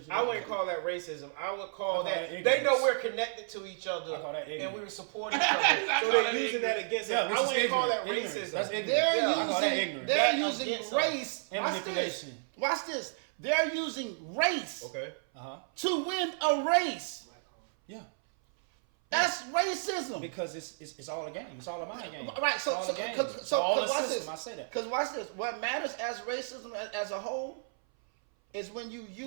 I wouldn't call that racism. I would call that ignorance. they know we're connected to each other I call that and ignorance. we support each other. So they're using that against us. which I is wouldn't call that ignorant. racism. That's ignorant. They're I call that ignorant. They're That using against race and watch manipulation. This. Watch this. They're using race Okay. to win a race. Yeah. That's racism. Because it's all a game. It's all a mind game. Right. It's So all a game. watch system. this. I say that. Because watch this. What matters as racism as a whole is when you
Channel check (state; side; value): silent; left; 57 dB below the other